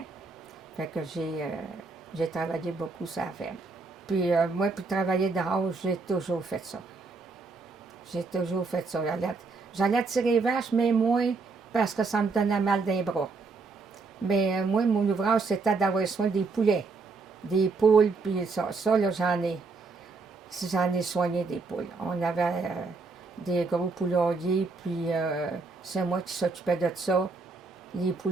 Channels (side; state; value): left; quieter; 4.1 dB